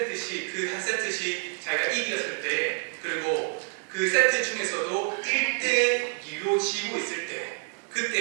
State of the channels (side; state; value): left; quieter; 39.3 dB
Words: 그 한 세트씩 자기가 이겼을 때 그리고 그 세트 중에서도 1대2로 지고 있을 때